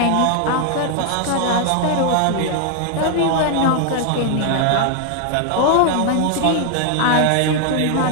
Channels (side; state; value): both; different; correlation 0.00